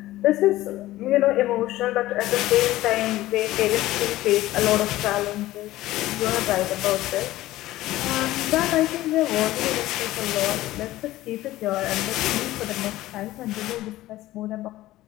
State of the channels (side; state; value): right; quieter; 16.2 dB